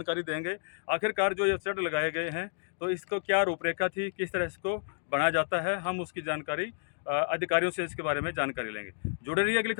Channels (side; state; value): right; silent; digital silence